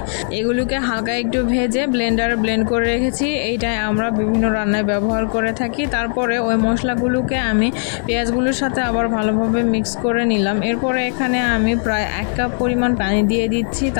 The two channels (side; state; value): right; silent; digital silence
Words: এগুলোকে হালকা একটু ভেজে ব্লেন্ডারে ব্লেন্ড করে রেখেছি। এইটাই আমরা বিভিন্ন রান্নায় ব্যবহার করে থাকি। তারপরে ওই মশলাগুলোকে আমি পেঁয়াজগুলোর সাথে আবার ভালোভাবে মিক্স করে নিলাম। এরপরে এখানে আমি প্রায় 1 কাপ পরিমাণ পানি দিয়ে দিচ্ছি।